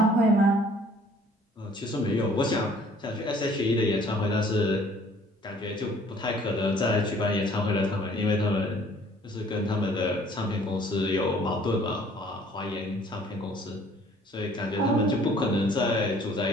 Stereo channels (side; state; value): both; normal; correlation 0.56